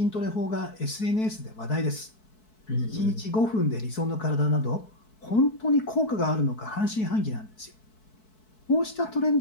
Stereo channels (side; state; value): right; late; 4.6 ms